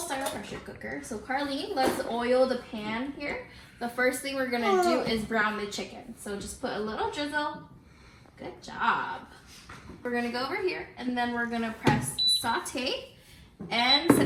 pressure cooker. So Carlene, let's oil the pan here. The first thing we're gonna do is brown the chicken. So just put a little drizzle. Good job. We're gonna go over here and then we're gonna press saute and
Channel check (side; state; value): both; identical; correlation 1.00